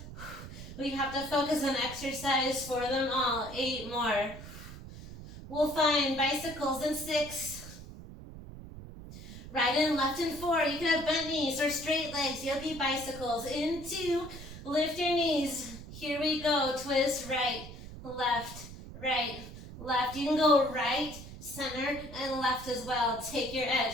We have to focus on exercise for them all. 8 more. We'll find bicycles in 6. Right and left in 4. You can have bent knees or straight legs. Yogi bicycles in 2. Lift your knees. Here we go. Twist right, left, left. You can go right, center, and left as well. Take your edge,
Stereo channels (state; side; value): noise; right; rumble, 13 dB below the sound